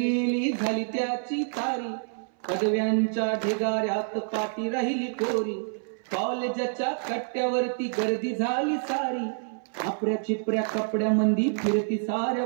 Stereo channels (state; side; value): silent; left; 59 dB below the other